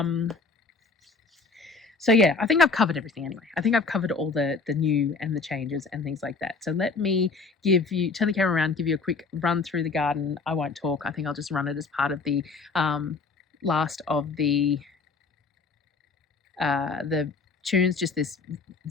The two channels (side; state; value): right; quieter; 4.3 dB